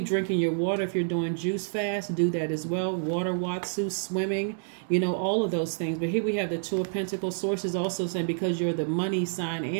drinking your water. If you're doing juice fast, do that as well. Water, watsu, swimming, all of those things. But here we have the Two of Pentacles. Source is also saying because you're the money sign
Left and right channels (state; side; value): silent; left; digital silence